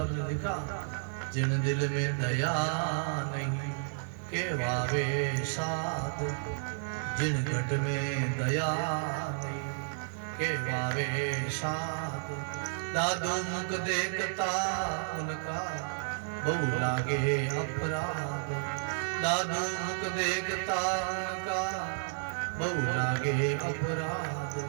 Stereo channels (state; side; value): silent; left; digital silence